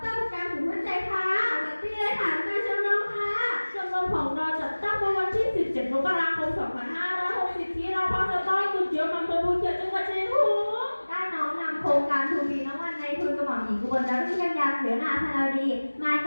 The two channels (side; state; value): both; inverted; correlation -1.00